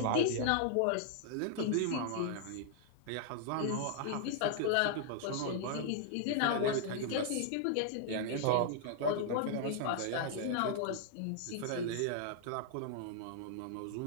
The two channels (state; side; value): different; both; correlation -0.01